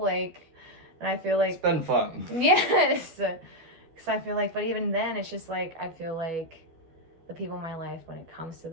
and I feel like it's been fun. Yes. Because I feel like, but even then, it's just like, I feel like the people in my life, when it comes to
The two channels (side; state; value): left; late; 12 ms